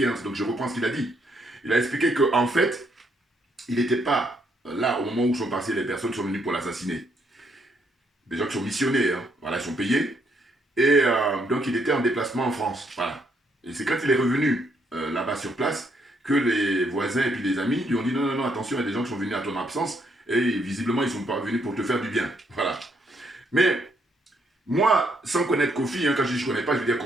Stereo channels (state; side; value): normal; both; correlation 0.73